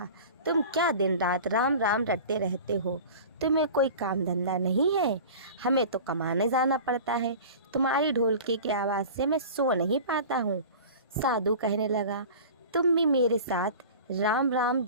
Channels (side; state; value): both; inverted; correlation -0.38